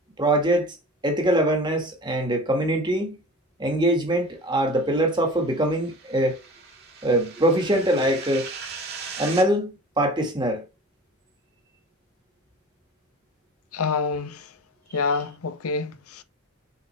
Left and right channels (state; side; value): normal; both; correlation 0.38